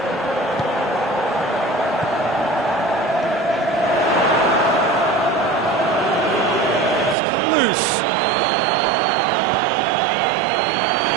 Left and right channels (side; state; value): left; drops out; at 7.2 s